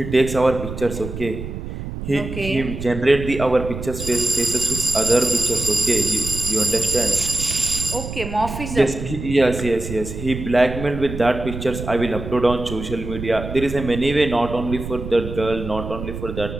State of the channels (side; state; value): right; noise; rumble, 8 dB below the sound